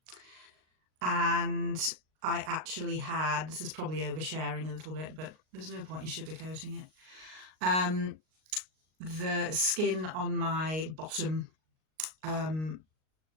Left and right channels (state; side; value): late; left; 38 ms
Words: And I actually had, this is probably oversharing a little bit, but there's no point in sugarcoating it. The skin on my bottom